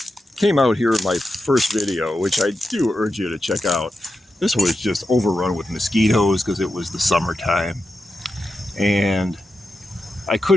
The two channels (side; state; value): both; normal; correlation 0.89